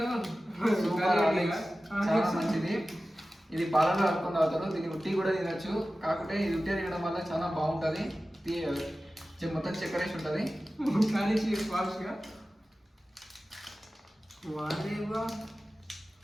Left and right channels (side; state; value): both; normal; correlation 0.95